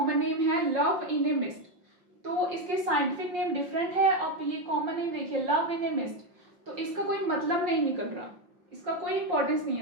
नेम है लव इन ए मिस्ट। तो इसके साइंटिफिक नेम डिफरेंट है और ये कॉमन नेम देखिए लव इन ए मिस्ट, तो इसका कोई मतलब नहीं निकल रहा, इसका कोई इंपॉर्टेंस नहीं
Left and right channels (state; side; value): late; left; 5.7 ms